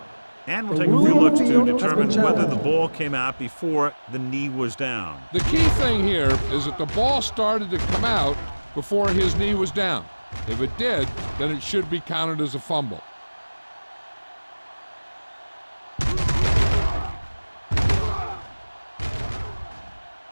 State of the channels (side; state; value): both; inverted; correlation -1.00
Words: And we'll take a few looks to determine whether the ball came out before the knee was down. The key thing here is that the ball started to come out before his knee was down. If it did, then it should be counted as a fumble.